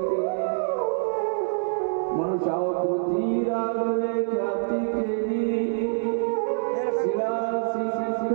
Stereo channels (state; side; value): silent; left; digital silence